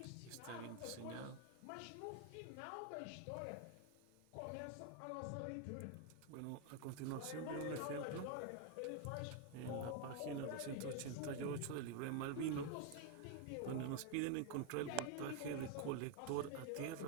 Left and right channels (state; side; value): different; both; correlation 0.01